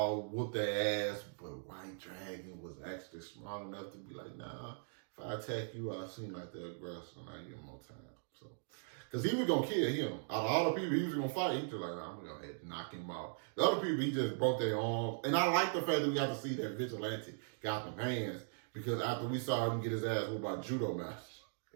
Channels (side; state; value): left; silent; digital silence